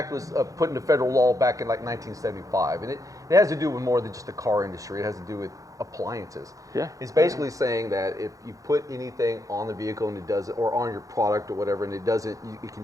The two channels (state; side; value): late; left; 0.16 ms